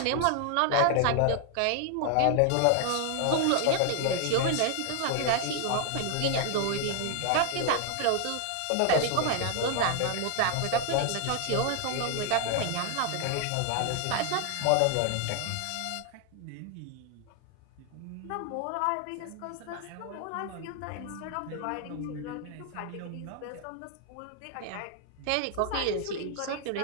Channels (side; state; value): both; different; correlation 0.00